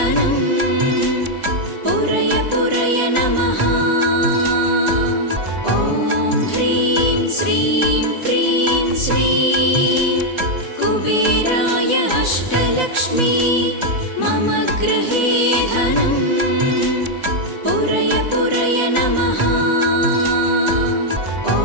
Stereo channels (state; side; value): late; left; 3.7 ms